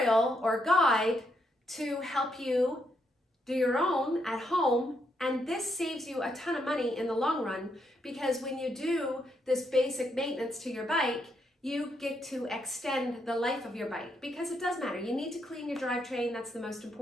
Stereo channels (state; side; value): normal; both; correlation 0.77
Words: or guide to help you do your own at home. And this saves you a ton of money in the long run, because when you do this basic maintenance to your bike, you get to extend the life of your bike, because it does matter. You need to clean your drivetrain. That's the most